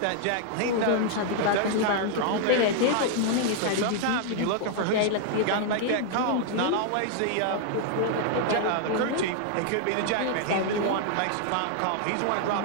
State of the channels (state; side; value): different; both; correlation -0.01